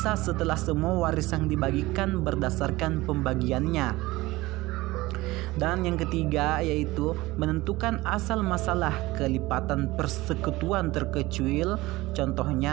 setelah semua warisan dibagikan berdasarkan pembagiannya. Dan yang ketiga yaitu menentukan asal masalah kelipatan persekutuan terkecuil,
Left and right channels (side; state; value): left; quieter; 19.6 dB